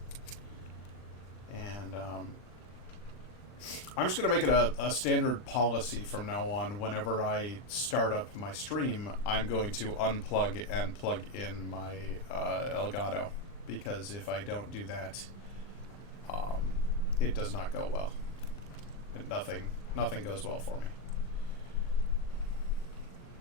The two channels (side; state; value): right; late; 40 ms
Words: And I'm just going to make it a standard policy from now on. Whenever I start up my stream, I'm going to unplug and plug in my Elgato. Because if I don't do that, it does not go well. Nothing goes well for me.